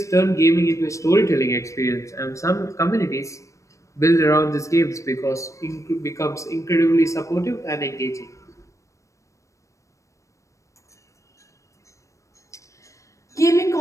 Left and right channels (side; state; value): right; late; 0.15 ms